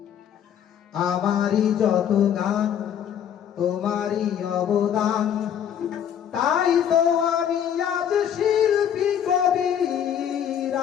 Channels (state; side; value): quieter; right; 9.2 dB